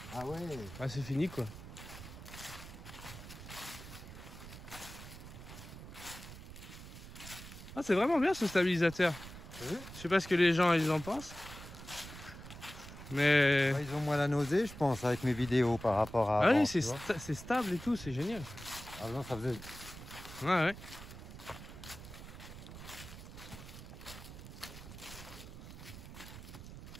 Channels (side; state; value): right; noise; rumble, 13 dB below the sound